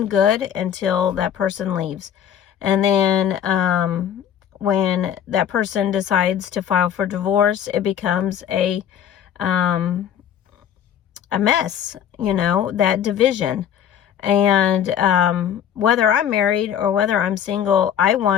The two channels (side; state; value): right; quieter; 9.3 dB